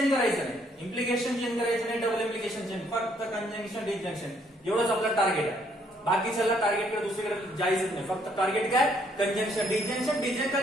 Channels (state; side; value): normal; both; correlation 0.68